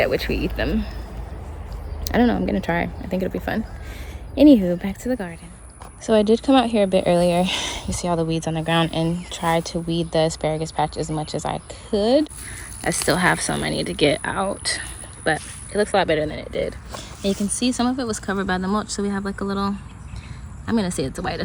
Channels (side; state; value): both; identical; correlation 1.00